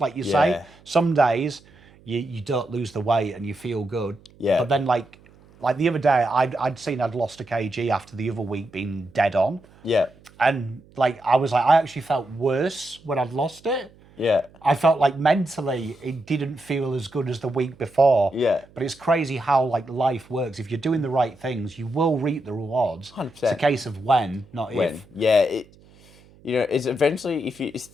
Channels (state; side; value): noise; right; hum, 27 dB below the sound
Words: Like you say, some days you don't lose the weight and you feel good. Yeah. But then like the other day, I'd seen I'd lost a kg after the other week being dead on. Yeah. And like, I was like, I actually felt worse when I'd lost it. Yeah. I felt like mentally it didn't feel as good as the week before. Yeah. But it's crazy how like life works. If you're doing the right things, you will reap the rewards. 100%. It's a case of when, not if. Yeah. You know, it's eventually if you're